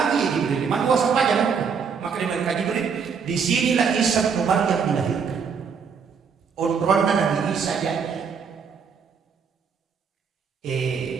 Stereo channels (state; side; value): quieter; left; 6.2 dB